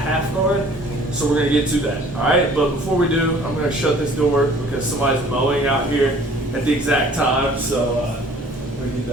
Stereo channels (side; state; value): both; normal; correlation 0.52